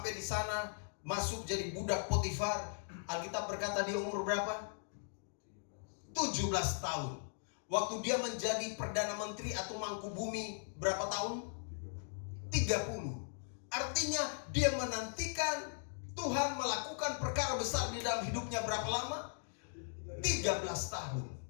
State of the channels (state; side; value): silent; right; digital silence